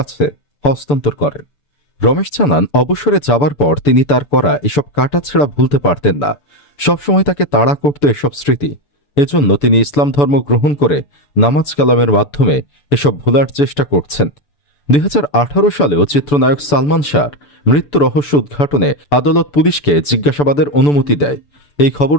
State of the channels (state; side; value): late; right; 6.9 ms